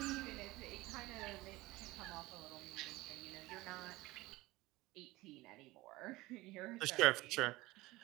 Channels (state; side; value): quieter; left; 19.8 dB